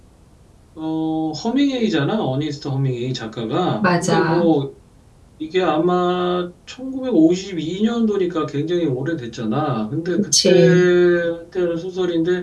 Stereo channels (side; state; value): both; identical; correlation 1.00